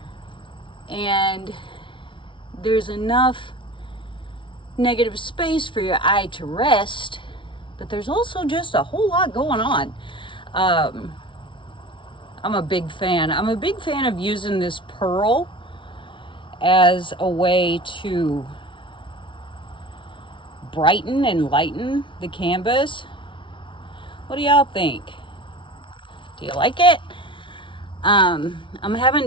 and there's enough negative space for your eye to rest, but there's also just a whole lot going on. I'm a big fan. I'm a big fan of using this pearl as a way to brighten and lighten the canvas. What do y'all think? Do you like it? I'm having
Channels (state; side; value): late; right; 0.24 ms